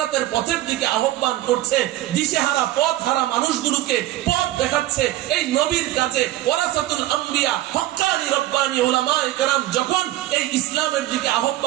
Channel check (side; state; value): left; quieter; 15.1 dB